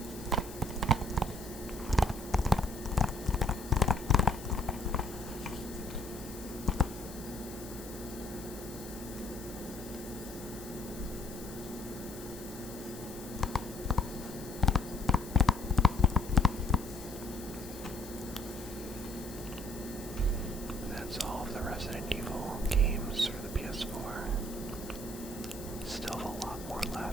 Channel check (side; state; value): left; noise; hiss, 15 dB below the sound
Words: That's all of the Resident Evil games for the ps4. Still have a lot more